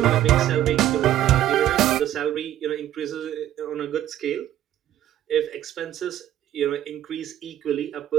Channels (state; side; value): quieter; left; 12.3 dB